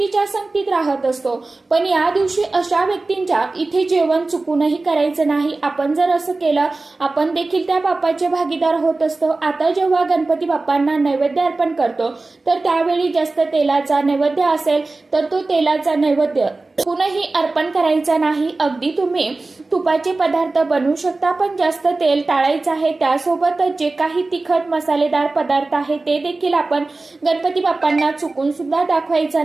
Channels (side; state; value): left; quieter; 3.4 dB